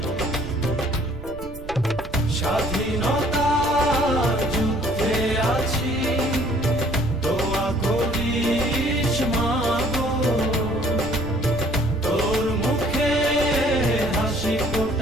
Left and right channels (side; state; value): right; noise; rumble, 13 dB below the sound